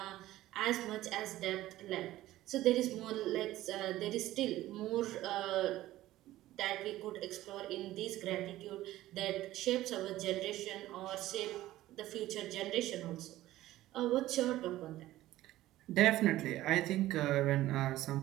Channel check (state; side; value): quieter; left; 15.4 dB